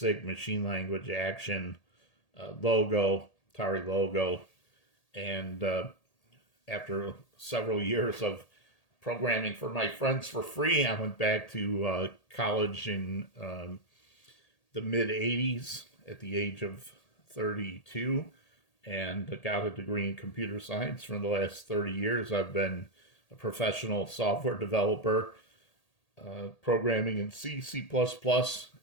machine language action, logo, Atari logo. And after several years of programming for my friends for free, I went back to college in the mid 80s at the age of 32 and got a degree in computer science. For the last 30 years, I've been a professional software developer, programming in C, C++,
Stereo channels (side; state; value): right; late; 1.8 ms